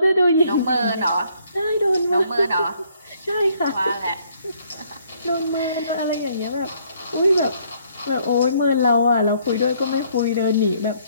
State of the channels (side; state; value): both; inverted; correlation -0.66